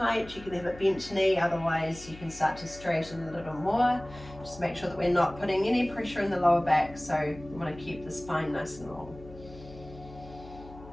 you can have a bent knee. Otherwise, you can start to straighten a little more. Just make sure that we're not putting any pressure in the lower back. So we want to keep the spine nice and long.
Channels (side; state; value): left; noise; hum, 17 dB below the sound